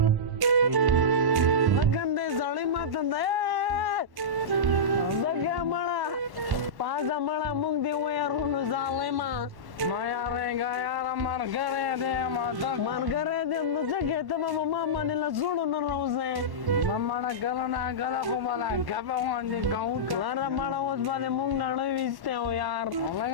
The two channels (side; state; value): left; late; 1.1 ms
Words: لګندې سړی ماته دی دګه مړه پازه مړه موږ دې ویارونو ظالمه ما یارېږه یاره ملګری دی ما دک ملګری دې نو څه کې ته به ما باندې له زړو نه راوځې نه مړه کله نه کله خو به لا ګپه غوندې کوو که لاره مړه اوس باندې موږ نړۍ ویستی و یار